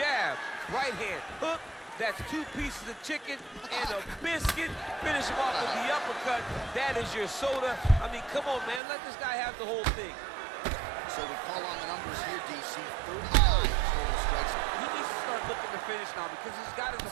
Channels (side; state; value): left; drops out; at 8.8 s